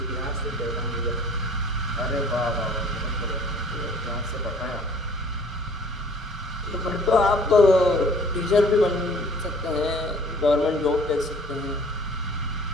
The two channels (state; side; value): normal; both; correlation 0.52